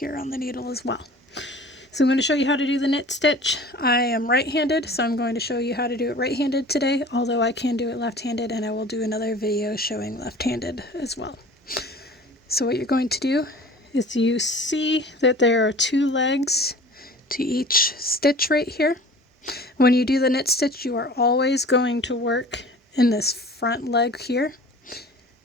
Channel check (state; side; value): normal; both; correlation 0.43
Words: on the needle as well. So I'm going to show you how to do the knit stitch. I am right-handed, so I'm going to show you how to do it right-handed today, although I can do it left-handed, and I will do another video showing left-handed as well. So what you're going to do is you see that there are 2 legs to each stitch right here. When you do the knit stitch, you are always going to work in this front leg here.